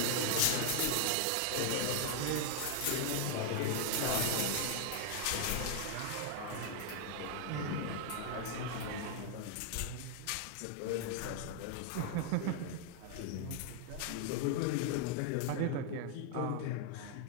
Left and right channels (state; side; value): different; both; correlation 0.00